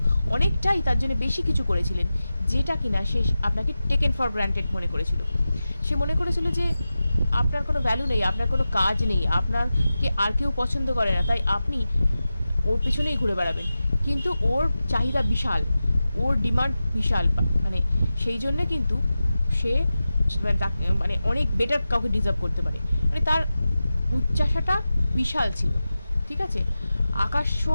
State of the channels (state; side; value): inverted; both; correlation -0.94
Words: অনেকটাই তার জন্য বেশি কিছু করেছিলেন, যেটা কিনা সে আপনাকে টেকেন ফর গ্রান্টেড মনে করেছিল। সে মনে করেছিল যে আপনার কোনো ভ্যালু নেই, আপনার কোনো কাজ নেই, আপনাকে আর কেউ পছন্দ করে না, তাই আপনি ওর পিছনেই ঘুরে বেড়াবেন। কিন্তু ওর চাহিদা বিশাল, ওর ডিমান্ড বিশাল, মানে সেই জন্যে কিন্তু সে মানে অনেক বেটার কাউকে ডিজার্ভ করতে পারে, মানে তার উচ্চাসাটা বিশাল ছিল, ঠিক আছে, আকাশ